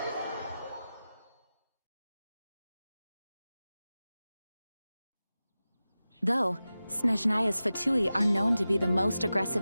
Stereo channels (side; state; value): both; inverted; correlation -0.95